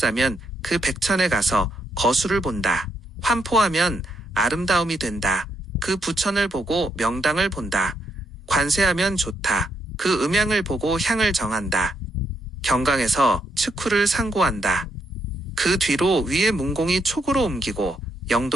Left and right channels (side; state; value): both; normal; correlation 0.77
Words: 그 백천에 가서 거수를 본다. 환포하면 아름다움이 된다. 그 부천을 보고 명당을 본다. 관세하면 좋다. 그 음양을 보고 향을 정한다. 경강에서 측후를 상고한다. 그 뒤로 위의 문공이 촉으로 옮기고